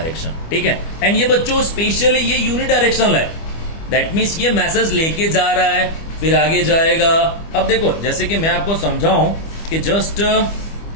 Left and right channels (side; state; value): right; late; 25 ms